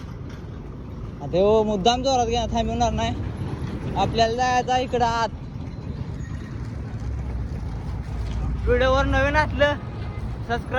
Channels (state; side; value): identical; both; correlation 1.00